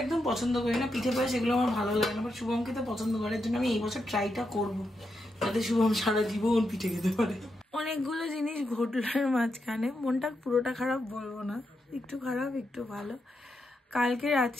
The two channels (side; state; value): both; normal; correlation 0.84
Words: একদম পছন্দ করি না, পিঠে পায়েস এগুলো আমার ভালো লাগে না, বাট শুভম খেতে পছন্দ করার জন্য আমি এই বছর ট্রাইটা করবো, যাতে শুভম সারা জীবন পিঠে খেতে পারে। অনেকগুলো জিনিস ঘটলোর মাঝখানে, মনটা পুরোটা খারাপ বলবো না, একটু খারাপ একটু ভালো। কালকে